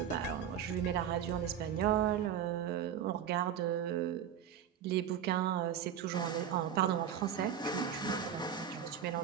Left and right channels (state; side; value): quieter; left; 9.1 dB